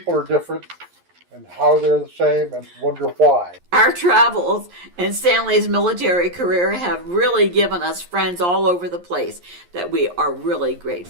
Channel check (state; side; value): late; left; 11 ms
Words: are different, and how they're the same, and wonder why. Our travels and Stanley's military career have really given us friends all over the place that we are really